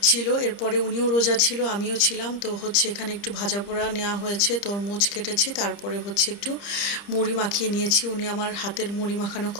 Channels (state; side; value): late; right; 30 ms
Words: ছিল। এরপরে উনিও রোজা ছিল, আমিও ছিলাম। তো এখানে একটু ভাজা পোড়া নেওয়া হয়েছে, তরমুজ কেটেছি, তারপরে একটু মুড়ি মাখিয়ে নিয়েছি। উনি আমার হাতের মুড়ি মাখানো